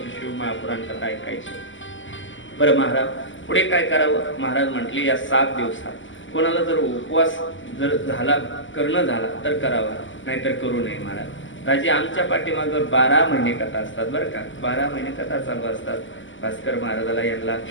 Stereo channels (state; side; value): late; right; 0.55 ms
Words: शिव महापुराण कथा ऐकायची. बरं महाराज पुढे काय करावं? महाराज म्हटले या 7 दिवसात कोणाला जर उपवास जर झाला, करणं झाला तर करावा, नाहीतर करू नये महाराज. राजे आमच्या पाठीमागं 12 महिने कथा असतात बरं का. 12 महिने कथा चालू असतात. भास्कर महाराजाला, यांना